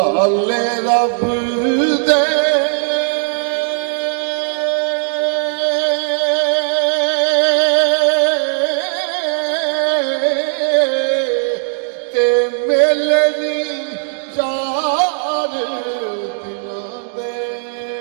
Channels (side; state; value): left; silent; digital silence